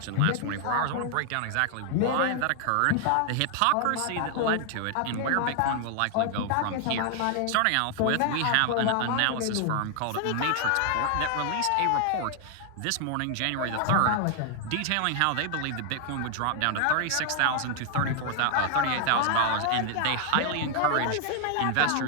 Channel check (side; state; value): both; different; correlation 0.00